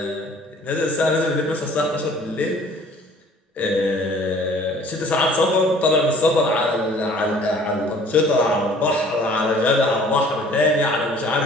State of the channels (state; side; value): normal; both; correlation 0.53